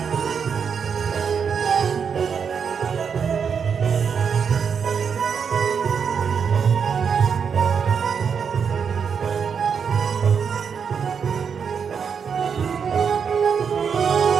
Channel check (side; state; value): left; quieter; 6.6 dB